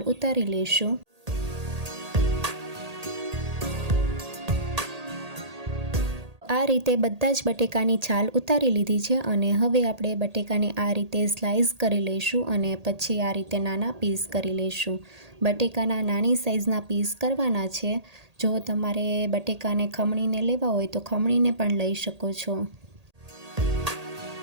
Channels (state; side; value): late; left; 1.8 ms